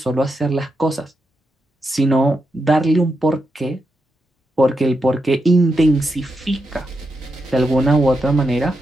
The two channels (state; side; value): normal; both; correlation 0.85